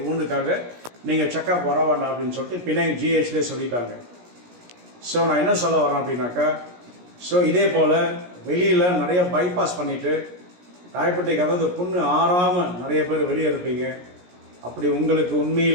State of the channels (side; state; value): left; late; 17 ms